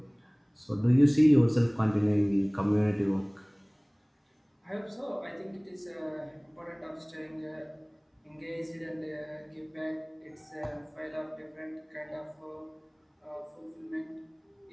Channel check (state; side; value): identical; both; correlation 1.00